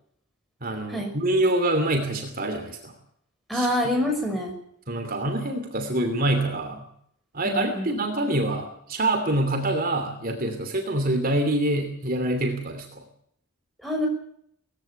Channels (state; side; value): normal; both; correlation 0.28